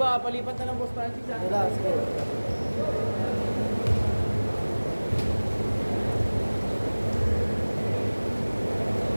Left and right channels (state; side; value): inverted; both; correlation -1.00